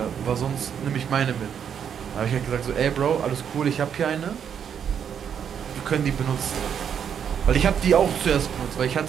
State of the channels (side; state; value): left; quieter; 8.1 dB